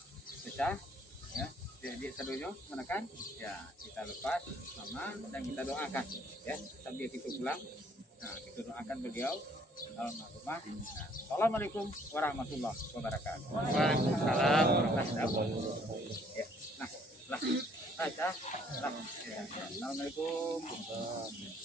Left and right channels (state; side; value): normal; both; correlation 0.62